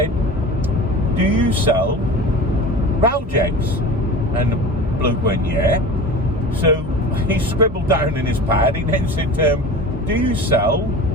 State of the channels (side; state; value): both; normal; correlation 0.35